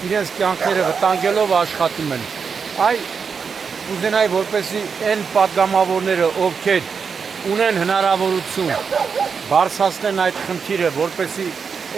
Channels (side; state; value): left; quieter; 5.9 dB